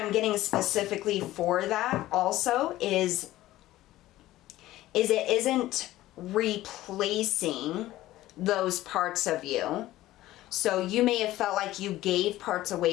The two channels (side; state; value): right; quieter; 15.7 dB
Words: getting specifically for that also is it isn't replacing those parts of you. So you may have felt like you gave parts